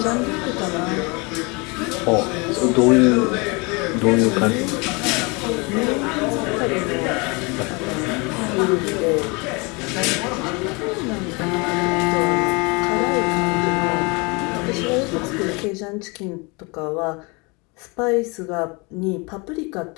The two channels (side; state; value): right; quieter; 28.8 dB